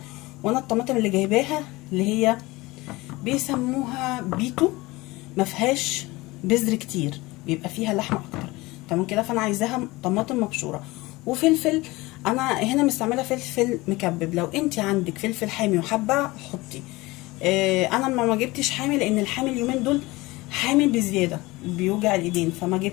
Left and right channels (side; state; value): right; quieter; 21.2 dB